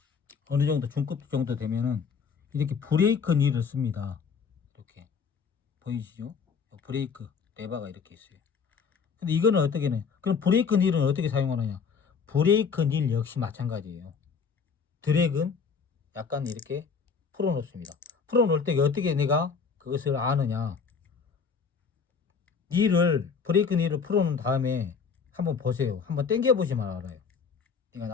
어느 정도 중급 정도 되면은 이렇게 브레이크 닐을 씁니다. 이렇게. 보이시죠? 브레이크 레버가 이렇게 있어요. 근데 이거는 어떻게 해? 그럼 브레이크 닐은 어떻게 사용하느냐? 브레이크 닐 역시 마찬가지예요. 드랙은 약간 이렇게 풀어 놓습니다. 풀어 놓을 때 어떻게 내가 그것을 아느냐? 닐을 브레이크 닐을 풀어 놓은 다음에 한번 보세요. 한번 당겨 보시면 알아요. 이거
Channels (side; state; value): right; quieter; 5.8 dB